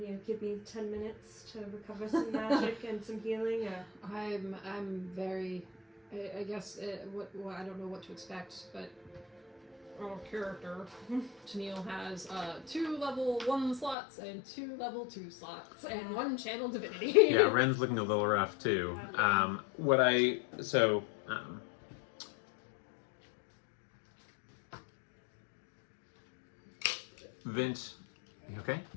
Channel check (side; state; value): right; drops out; at 14.0 s